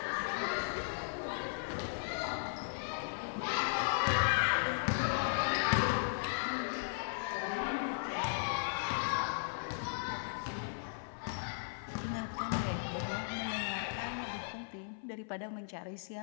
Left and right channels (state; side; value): silent; right; 53 dB below the other